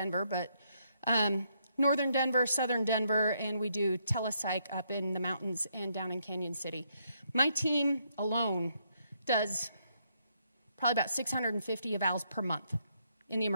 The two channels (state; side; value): inverted; both; correlation -0.75